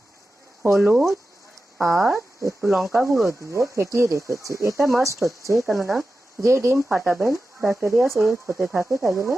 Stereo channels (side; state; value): both; normal; correlation 0.93